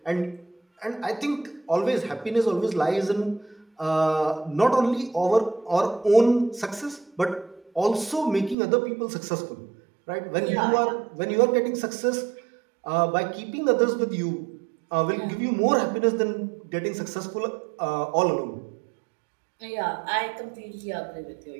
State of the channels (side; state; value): left; drops out; at 8.6 s